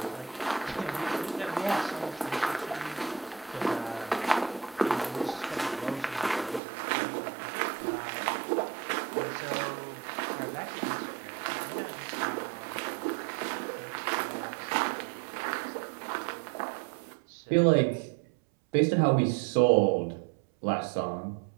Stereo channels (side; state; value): left; drops out; at 6.6 s